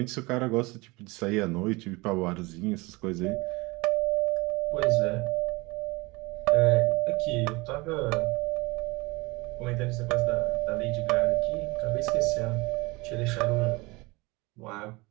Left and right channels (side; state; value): left; quieter; 24.2 dB